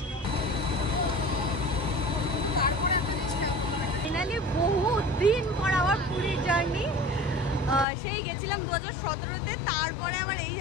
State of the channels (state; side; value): drops out; right; at 7.9 s